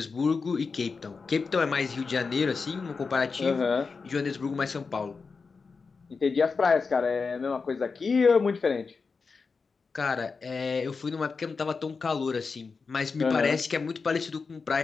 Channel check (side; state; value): right; quieter; 4.8 dB